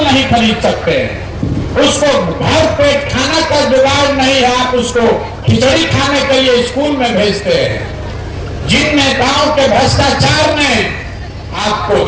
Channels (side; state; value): both; identical; correlation 1.00